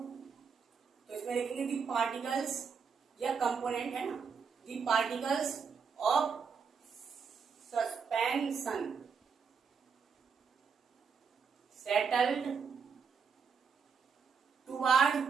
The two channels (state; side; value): quieter; left; 6.0 dB